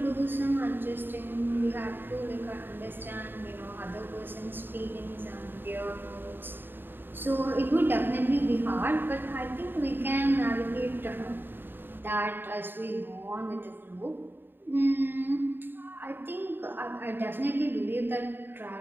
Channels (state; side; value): late; left; 0.096 ms